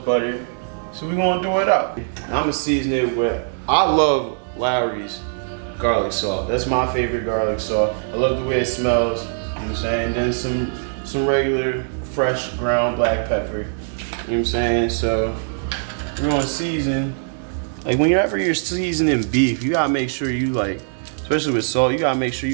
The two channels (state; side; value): silent; left; 65 dB below the other